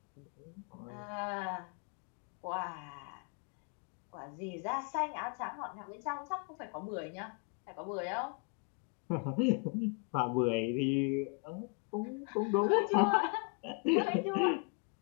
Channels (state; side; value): quieter; right; 33.4 dB